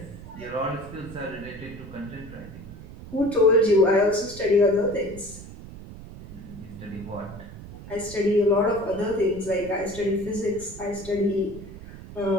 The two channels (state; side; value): noise; right; rumble, 14 dB below the sound